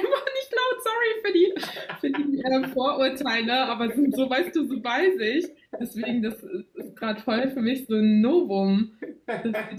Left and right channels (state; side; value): identical; both; correlation 1.00